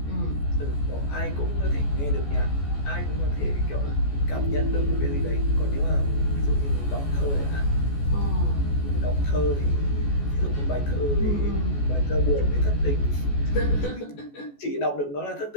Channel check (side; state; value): right; late; 14 ms